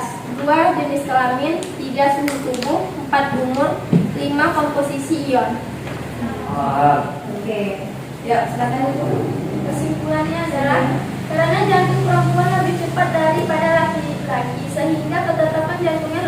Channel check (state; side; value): identical; both; correlation 1.00